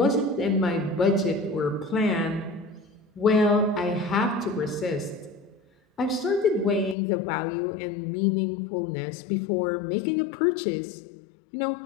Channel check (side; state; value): right; drops out; at 7.0 s